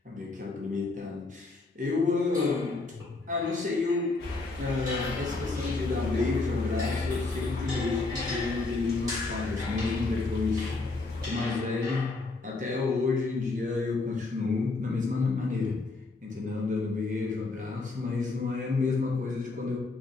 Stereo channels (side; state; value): right; quieter; 3.6 dB